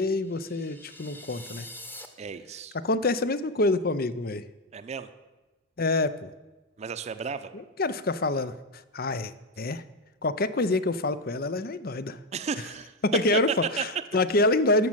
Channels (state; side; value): normal; both; correlation 0.08